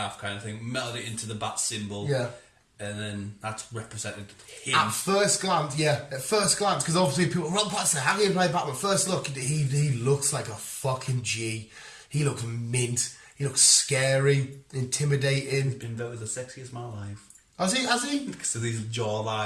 kind of thing, melted it into the Bat symbol. Yeah. And then that's represented him. At first glance, because obviously people, Robert Pattinson, how do you play Batman? First look, he looks like a fucking G. He looks mint. He looks scary, intimidating. He's been voted the sexiest man alive. Has he? Because of his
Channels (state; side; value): identical; both; correlation 1.00